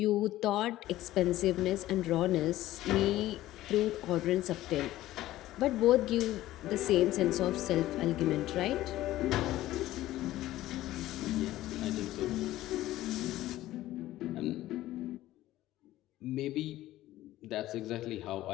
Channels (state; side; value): quieter; right; 15.3 dB